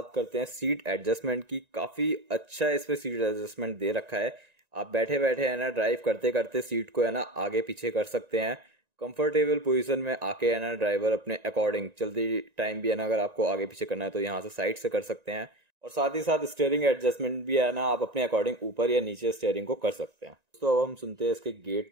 करते हैं सीट एडजस्टमेंट की। काफ़ी अच्छा इसमें सीट एडजस्टमेंट दे रखा है। आप बैठे बैठे है ना ड्राइव करते करते सीट को है ना आगे पीछे कर सकते हैं। कंफर्टेबल पोजीशन में आके है ना ड्राइवर अपने अकॉर्डिंग चलती टाइम भी है ना अगर आपको आगे पीछे करना है तो यहाँ से साइड से कर सकते हैं। और साथ ही साथ स्टीयरिंग एडजस्टमेंट भी है ना आप अपने अकॉर्डिंग ऊपर या नीचे स्टीयरिंग को कर सकते हैं। दोस्तों अब हम सुनते हैं इसके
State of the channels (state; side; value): late; left; 1.9 ms